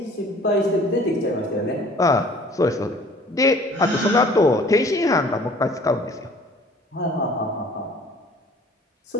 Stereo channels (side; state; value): both; normal; correlation 0.51